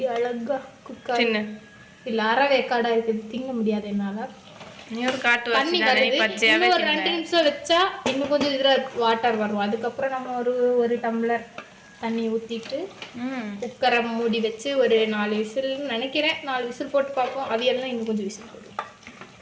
அழகா குக் ஆகுது. இல்லை அறவேக்காடாக இருக்குது, திங்க முடியாது என்னால். தண்ணி வருது. இன்னும் ஒரு 2 நிமிஷம் வச்சா இன்னும் கொஞ்சம் இதில் வாட்டர் வரும். அதுக்கப்புறம் நம்ம ஒரு டம்ளர் தண்ணி ஊற்றிட்டு குக்கரை மூடி வச்சு ஒரு 4 விசில் நினைக்கிறேன். 4 விசில் போட்டு பார்ப்போம். அவியெல்லாம் இன்னும் கொஞ்சம் விசில் போடுவோம்.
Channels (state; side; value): identical; both; correlation 1.00